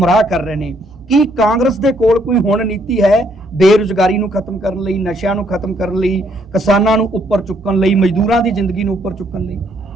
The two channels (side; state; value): right; noise; hum, 23 dB below the sound